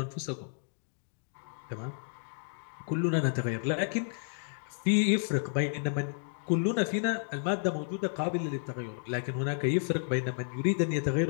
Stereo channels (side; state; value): right; silent; digital silence